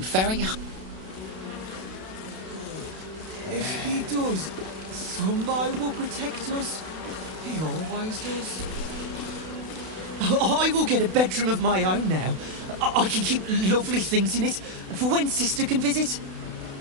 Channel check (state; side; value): late; left; 32 ms